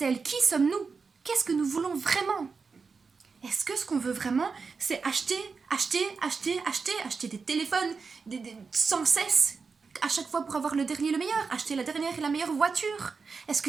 Qui sommes-nous? Qu'est-ce que nous voulons vraiment? Est-ce que ce qu'on veut vraiment, c'est acheter des téléphones sans cesse, à chaque fois pour avoir le dernier, le meilleur, acheter la dernière et la meilleure voiture? Est-ce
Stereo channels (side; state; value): left; quieter; 5.0 dB